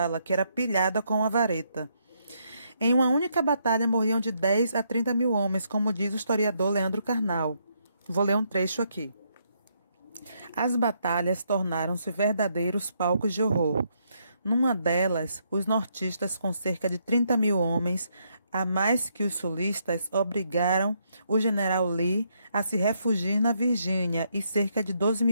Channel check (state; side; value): inverted; both; correlation -0.75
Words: que era pilhada com uma vareta. Em uma única batalha morriam de 10 a 30 mil homens, como diz o historiador Leandro Carnal. Vou ler um trecho aqui. As batalhas tornaram-se verdadeiros palcos de horror. Numa delas, os nortistas, com cerca de 30 mil homens, a mais que os sulistas, obrigaram o general Lee a se refugiar na Virgínia e cerca de 12